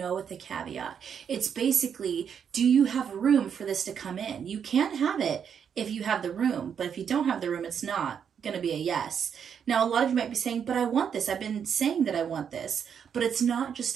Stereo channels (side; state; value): left; quieter; 7.6 dB